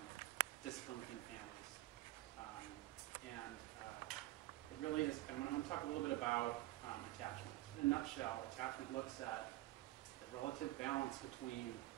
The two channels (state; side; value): quieter; left; 17.3 dB